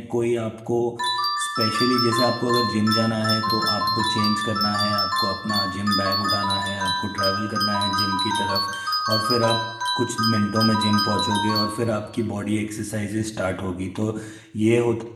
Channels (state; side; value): identical; both; correlation 1.00